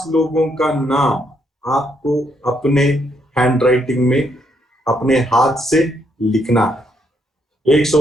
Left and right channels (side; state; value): both; normal; correlation 0.75